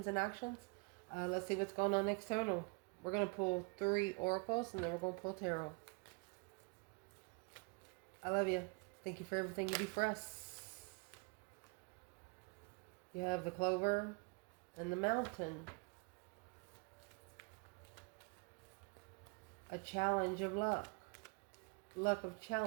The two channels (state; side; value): quieter; left; 31.5 dB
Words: and actions. Let's see what's going on external. We're going to pull 3 oracles, and then we're going to pull tarot. I love you. Thank you for everything you do for us. You have the clover and the mountain. A challenge of luck. Luck of